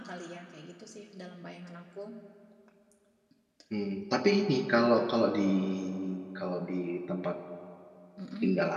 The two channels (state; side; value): identical; both; correlation 1.00